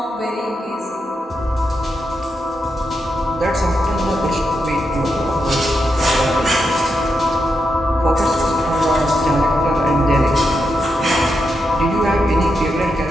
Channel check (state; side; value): normal; both; correlation 0.84